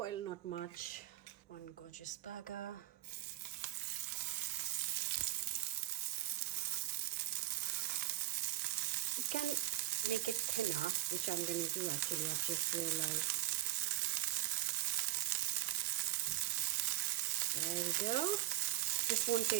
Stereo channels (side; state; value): left; quieter; 15.0 dB